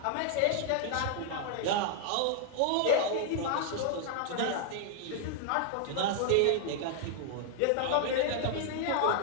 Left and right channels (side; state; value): both; different; correlation -0.01